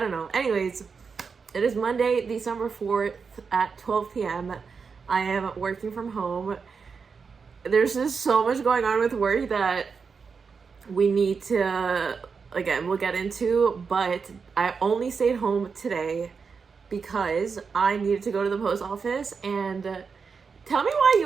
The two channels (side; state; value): left; quieter; 5.4 dB